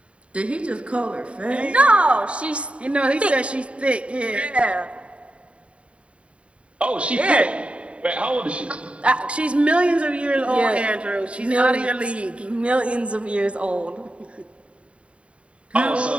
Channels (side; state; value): left; late; 0.061 ms